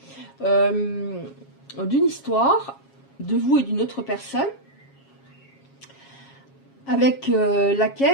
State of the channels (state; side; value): late; right; 7.3 ms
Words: d'une histoire de vous et d'une autre personne avec